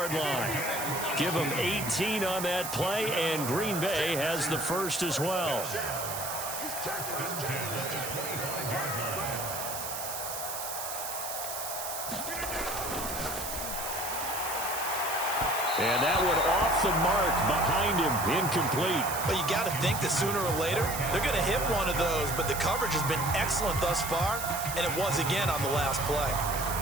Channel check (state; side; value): noise; right; hiss, 6 dB below the sound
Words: line. Give them 18 on that play, and Green Bay has the first as well. And that one off the mark behind him, incomplete. Well, you got to think that sooner or later they're going to hit one of those, but the coverage has been excellent thus far, and it was again on the last play.